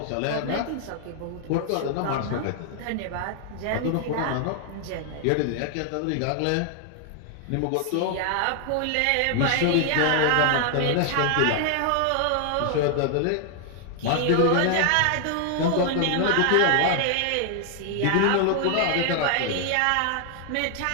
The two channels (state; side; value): different; both; correlation 0.00